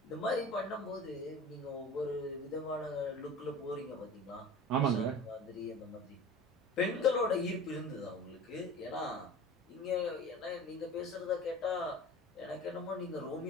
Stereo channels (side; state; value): both; normal; correlation 0.38